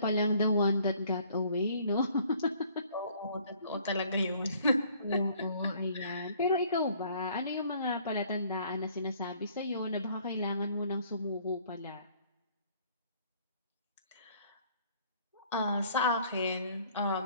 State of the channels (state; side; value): inverted; both; correlation -0.58